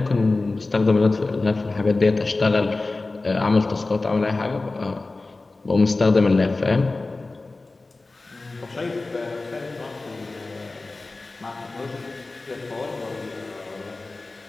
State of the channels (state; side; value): quieter; right; 3.3 dB